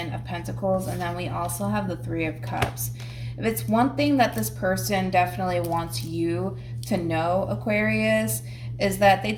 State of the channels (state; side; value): identical; both; correlation 1.00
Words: of Pentacles. And then we also have the Three of Cups. If it's one thing that this person definitely wants you to know, Aquarius, is that they